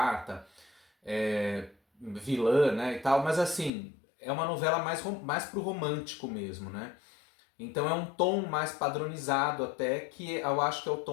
vilã, né, e tal, mas assim, é uma novela mais pro romântico mesmo, né? Então é um tom mais padronizado até, que eu acho que é o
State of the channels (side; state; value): right; drops out; at 3.7 s